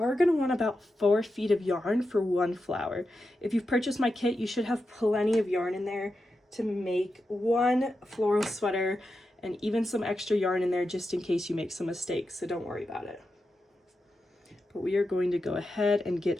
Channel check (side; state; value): both; normal; correlation 0.89